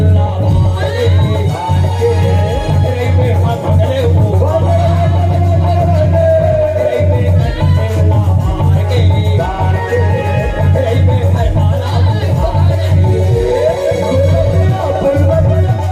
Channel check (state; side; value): identical; both; correlation 1.00